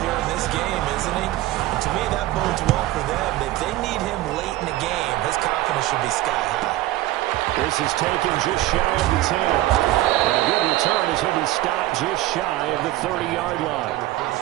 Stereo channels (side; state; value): left; quieter; 16.2 dB